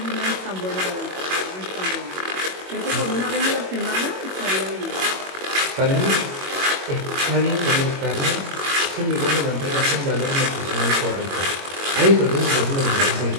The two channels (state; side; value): late; left; 21 ms